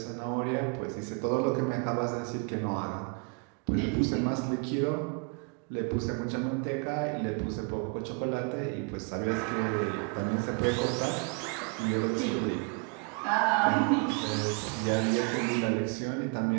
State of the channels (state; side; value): quieter; left; 36.3 dB